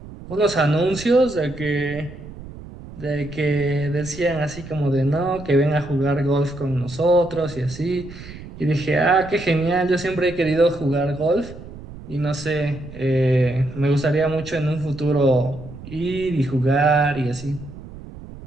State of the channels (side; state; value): right; noise; rumble, 15 dB below the sound